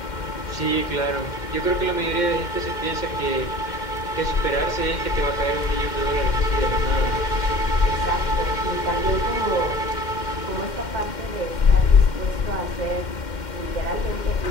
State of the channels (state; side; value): late; right; 2.1 ms